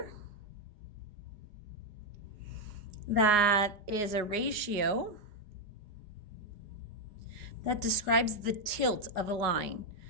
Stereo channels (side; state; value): left; late; 4.9 ms